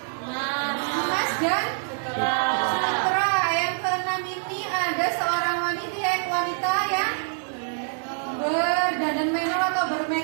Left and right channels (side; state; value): left; silent; digital silence